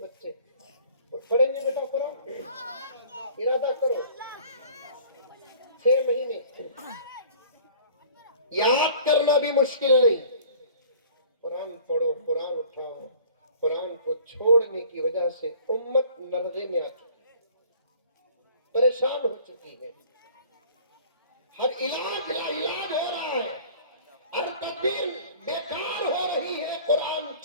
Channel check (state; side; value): inverted; both; correlation -0.49